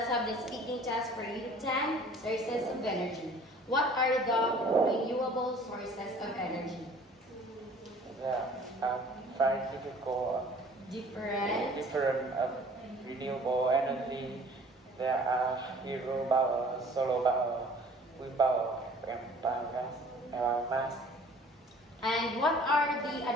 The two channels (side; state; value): both; normal; correlation 0.51